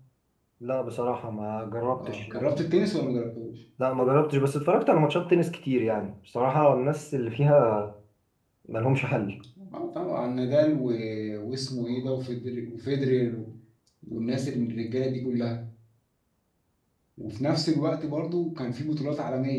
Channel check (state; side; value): identical; both; correlation 1.00